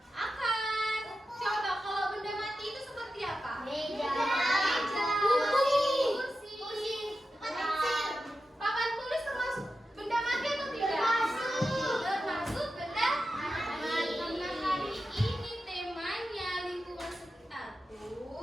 Akar. Coba kalau benda mati itu seperti apa? Meja. Kursi. Papan tulis termasuk benda mati atau tidak? Termasuk benda mati. Hari ini temanya lingkungan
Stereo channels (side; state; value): both; normal; correlation 0.91